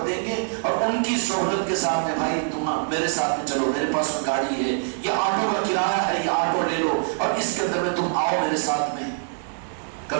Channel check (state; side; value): silent; left; digital silence